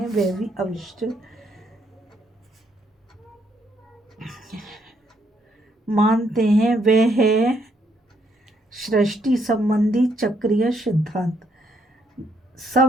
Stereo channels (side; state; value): both; normal; correlation 0.73